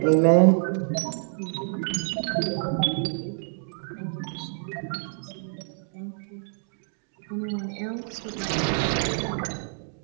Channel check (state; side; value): silent; left; digital silence